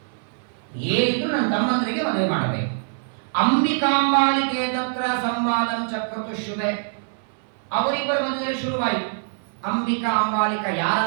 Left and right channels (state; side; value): silent; left; 63 dB below the other